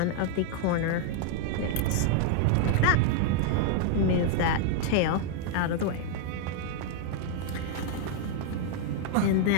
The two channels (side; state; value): both; different; correlation -0.01